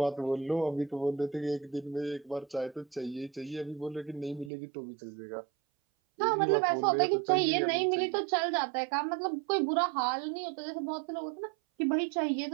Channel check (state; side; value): drops out; left; at 4.5 s